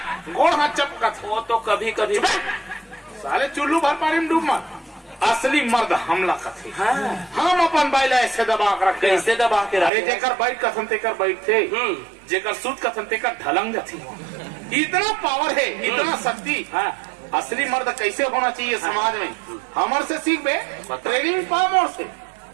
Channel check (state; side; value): drops out; left; at 9.9 s